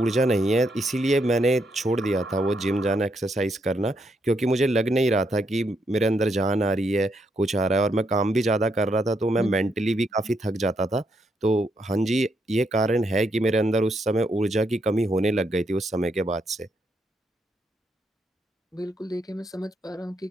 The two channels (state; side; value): normal; both; correlation 0.78